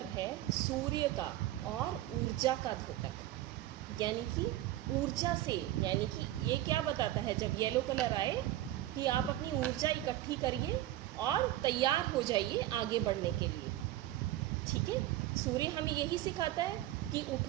है सूर्य का और ऊर्जा का द्योतक, यानी कि ऊर्जा से, यानी कि ये क्या बताता है? जब येलो कलर आए कि आप अपनी ऊर्जा इकट्ठी करिए और तैयार हो जाइए आगे बढ़ने के लिए। ठीक है, सूर्य हमें यही सिखाता है कि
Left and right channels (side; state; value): left; quieter; 14.7 dB